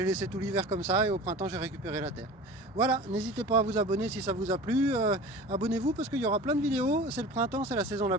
laissé tout l'hiver comme ça et au printemps j'ai récupéré la terre. Voilà, n'hésitez pas à vous abonner si ça vous a plu, abonnez-vous parce qu'il y aura plein de vidéos. C'est le printemps, c'est la saison la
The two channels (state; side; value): normal; both; correlation 0.38